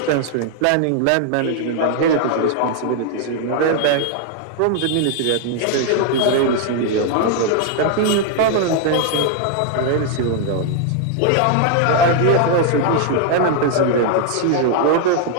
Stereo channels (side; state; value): both; different; correlation 0.00